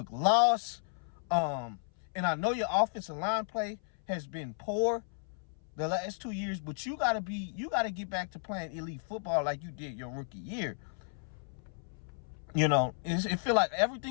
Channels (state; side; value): silent; right; 55 dB below the other